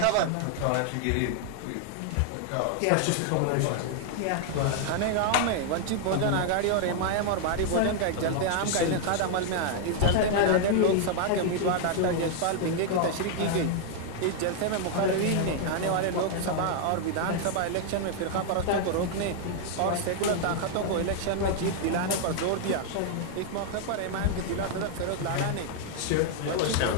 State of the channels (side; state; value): both; different; correlation 0.00